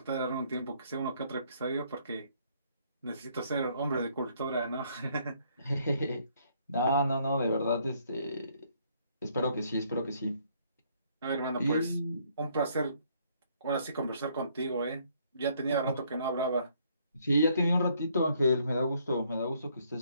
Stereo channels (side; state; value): both; inverted; correlation -0.67